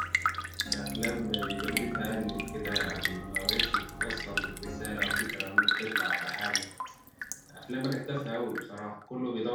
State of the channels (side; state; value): both; identical; correlation 1.00